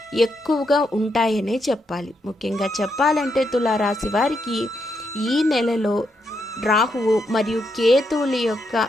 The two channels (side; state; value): both; normal; correlation 0.80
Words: ఎక్కువగా ఉంటాయనే చెప్పాలి. ముఖ్యంగా చెప్పాలంటే తులారాశి వారికి ఈ నెలలో రాహువు మరియు కేతువుల యొక్క